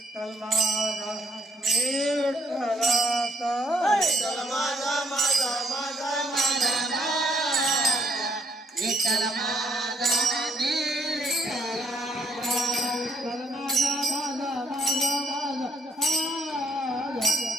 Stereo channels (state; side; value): normal; both; correlation 0.68